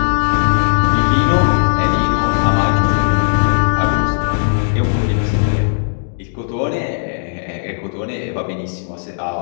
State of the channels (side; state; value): right; silent; digital silence